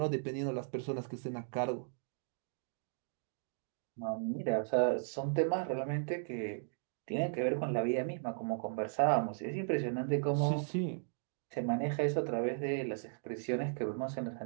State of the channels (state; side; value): silent; left; digital silence